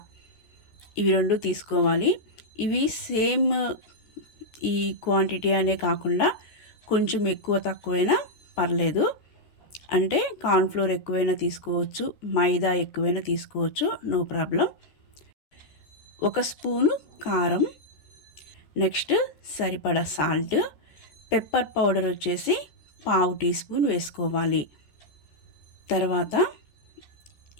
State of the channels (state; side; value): late; right; 14 ms